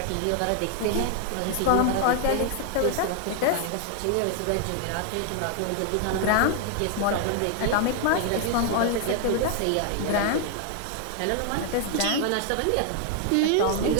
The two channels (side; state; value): both; different; correlation 0.00